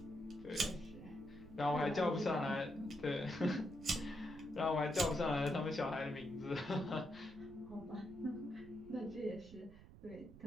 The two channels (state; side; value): noise; right; rumble, 18 dB below the sound